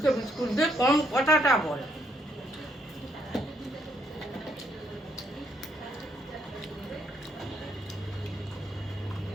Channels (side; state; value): both; normal; correlation 0.73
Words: বিস্কুট দে, কম কথাটা বল।